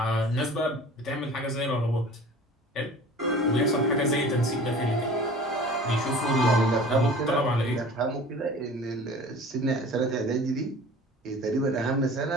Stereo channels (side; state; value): both; normal; correlation 0.43